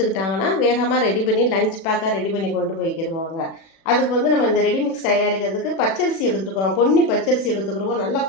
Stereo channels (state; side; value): late; right; 36 ms